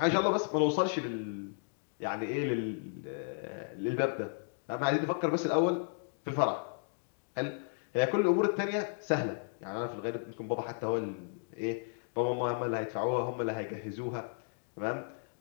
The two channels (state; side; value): silent; right; digital silence